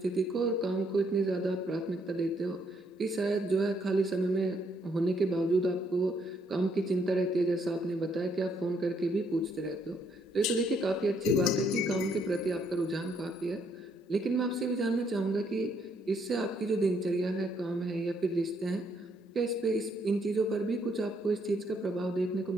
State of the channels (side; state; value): both; normal; correlation 0.71